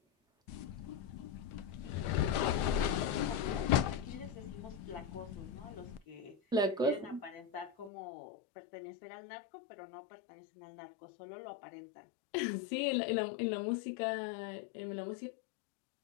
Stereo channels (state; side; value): drops out; right; at 7.9 s